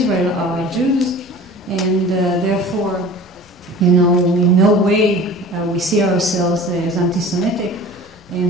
are Jews, and therefore, in no way we see ourselves as anti-Semitic,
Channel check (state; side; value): normal; both; correlation 0.42